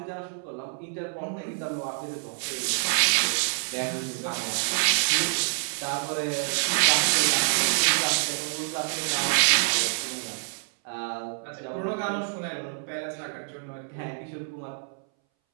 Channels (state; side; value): silent; left; 60 dB below the other